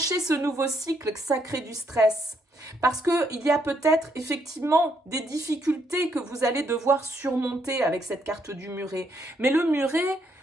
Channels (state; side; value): normal; both; correlation 0.74